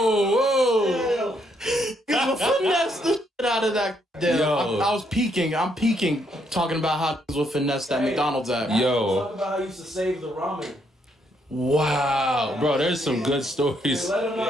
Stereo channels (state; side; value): normal; both; correlation 0.73